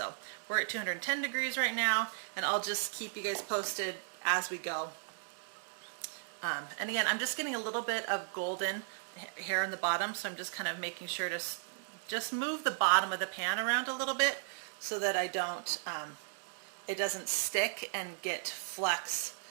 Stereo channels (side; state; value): left; silent; digital silence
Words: we're at 210 degrees right now, and I'll just keep you guys posted as we go. And again, I'm just getting a little bit of golden here in the bottom, so I'm just kind of making sure to just move the bottom of the pan around a little bit so that I don't, it doesn't stick and get flecks